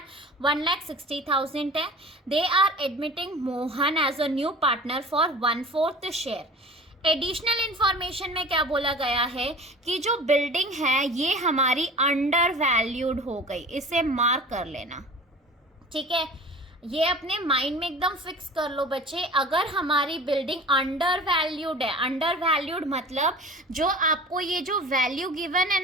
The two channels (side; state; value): both; normal; correlation 0.40